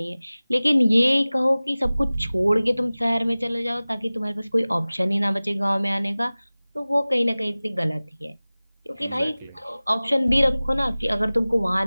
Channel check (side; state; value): both; inverted; correlation -0.98